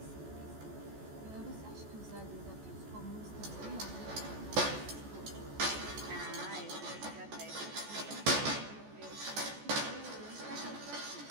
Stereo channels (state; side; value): late; left; 14 ms